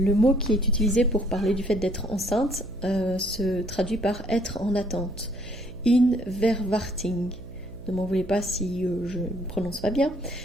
mot qui est utilisé pour parler du fait d'être enceinte se traduit par être en attente. In verwachting. Ne m'en voulez pas si je ne prononce pas bien,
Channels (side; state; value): right; noise; hum, 16 dB below the sound